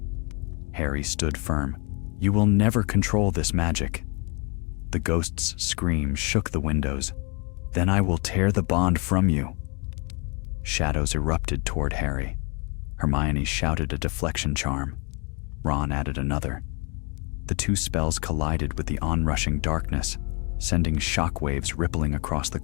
Harry stood firm. "You will never control this magic." The ghost's scream shook the windows. "Then I will tear the bond from you." Shadows erupted toward Harry. Hermione shouted a deflection charm. Ron added another. The two spells collided with the onrushing darkness, sending shockwaves rippling across the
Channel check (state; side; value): quieter; right; 32.0 dB